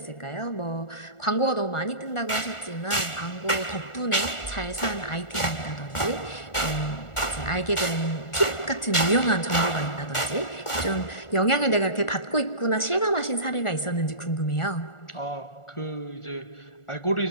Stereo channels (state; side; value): late; right; 1.4 ms